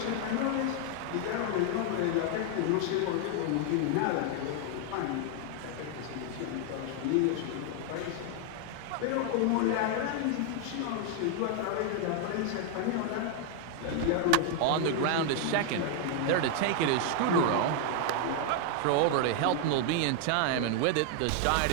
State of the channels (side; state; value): both; different; correlation 0.00